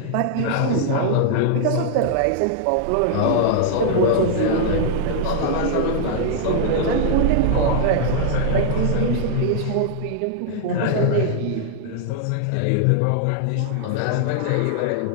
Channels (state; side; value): different; both; correlation -0.01